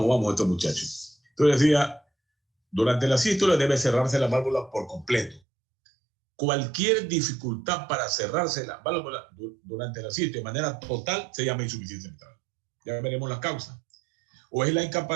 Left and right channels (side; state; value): left; drops out; at 5.4 s